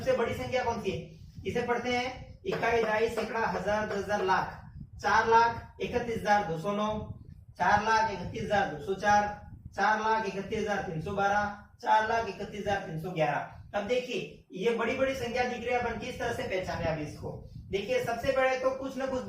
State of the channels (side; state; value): both; identical; correlation 1.00